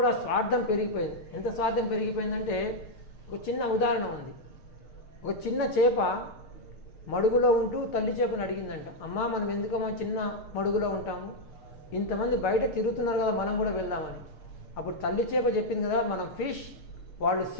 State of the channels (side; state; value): right; late; 6.6 ms